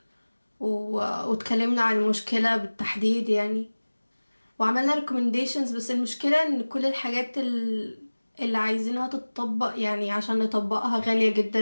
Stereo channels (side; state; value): both; inverted; correlation -1.00